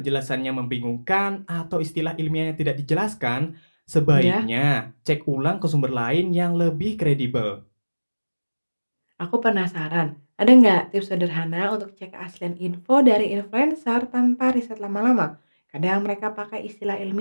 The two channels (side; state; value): both; inverted; correlation -1.00